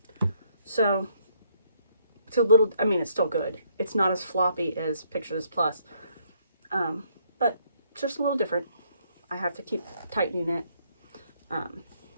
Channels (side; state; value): both; inverted; correlation -0.70